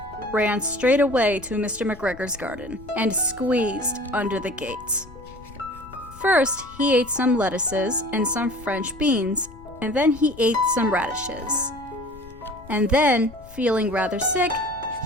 ran straight away to Mr. McGregor's garden and squeezed under the gates. First, he ate some lettuces and some French beans, and then he ate some radishes. And then, feeling rather sick,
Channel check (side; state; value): left; noise; rumble, 19 dB below the sound